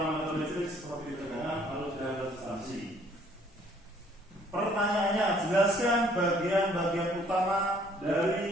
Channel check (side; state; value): both; normal; correlation 0.61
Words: listrik seperti tegangan, arus, dan resistansi. Pertanyaannya, jelaskan bagian-bagian utama